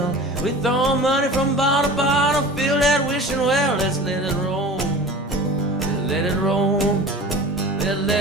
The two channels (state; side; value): normal; both; correlation 0.37